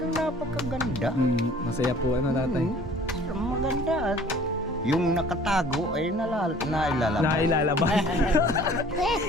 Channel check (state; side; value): normal; both; correlation 0.51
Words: napakaganda. Masaya po ano tatay? Maganda at yung nakatago ay nailalabas. Nailalabas.